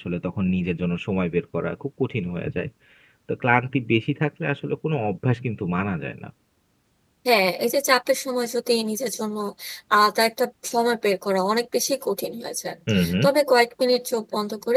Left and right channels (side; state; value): both; identical; correlation 1.00